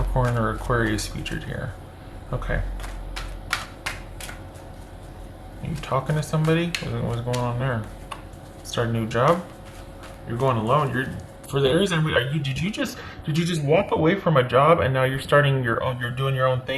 or Aquarius featured here. Okay. Are you talking to somebody? What's going on there? Start a new job? You're going alone. You're for the Aries. Did you just walk away from a job and now you're starting your own? You're doing your own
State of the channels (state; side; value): identical; both; correlation 1.00